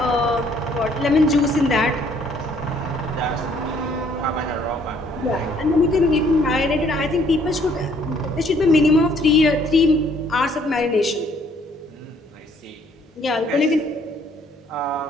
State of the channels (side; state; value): both; normal; correlation 0.63